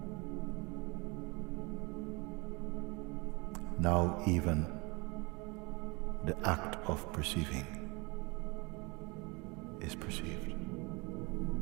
Now even the act of perceiving is perceived.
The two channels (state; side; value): quieter; left; 28.0 dB